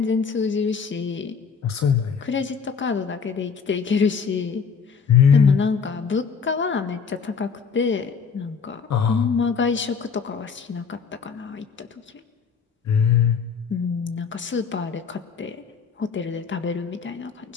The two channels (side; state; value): right; quieter; 6.0 dB